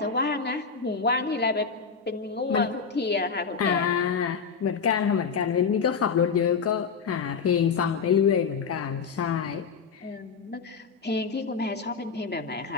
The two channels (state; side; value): quieter; right; 5.8 dB